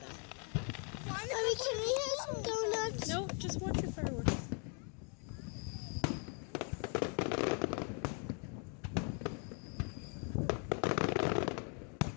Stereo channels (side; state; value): right; quieter; 39.3 dB